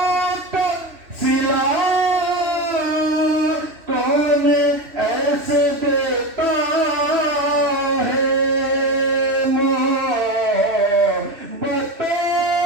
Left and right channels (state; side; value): late; left; 3.1 ms